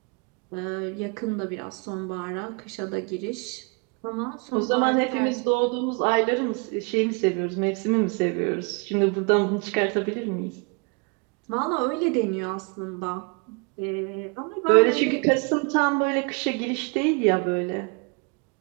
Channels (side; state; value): left; quieter; 32.4 dB